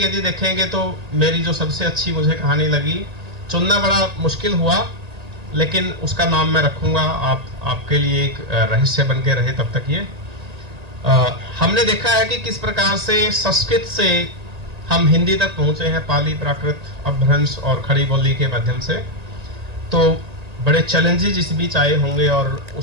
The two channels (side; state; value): left; late; 1.8 ms